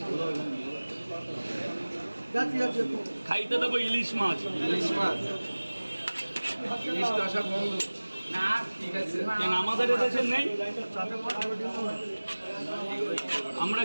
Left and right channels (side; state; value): both; inverted; correlation -1.00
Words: খাইতে দেবো ইলিশ মাছ। কেন আমাদের এদেশে নেই? আমরা